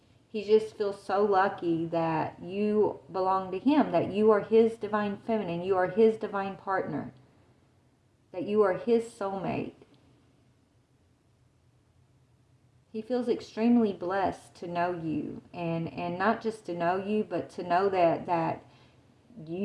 he just feels so lucky that you belong to him, that you are his divine feminine, you are his divine partner, that you are his soulmate. He feels extremely blessed to know you, and not just to know you, but to know that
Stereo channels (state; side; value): identical; both; correlation 1.00